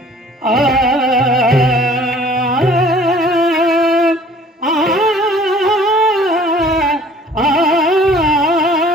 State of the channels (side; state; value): both; normal; correlation 0.52